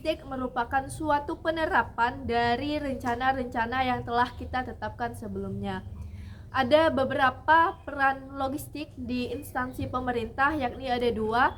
merupakan suatu penerapan dari rencana-rencana yang telah kita tetapkan sebelumnya. Ada beberapa peran logistik di instansi pemerintah, yakni ada dua,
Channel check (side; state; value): both; identical; correlation 1.00